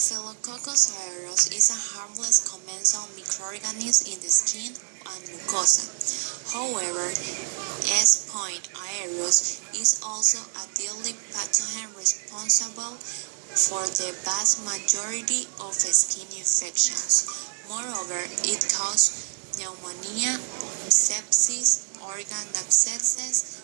aureus is a harmless commensal microorganism in the skin and mucosa. However, S. aureus is also a deadly pathogen responsible for the vast majority of skin infections. Moreover, it causes pneumonia, sepsis, organ abscesses,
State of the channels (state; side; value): silent; left; 61 dB below the other